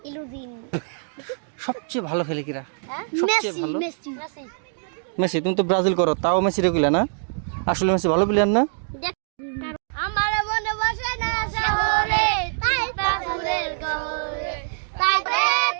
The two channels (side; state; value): left; silent; digital silence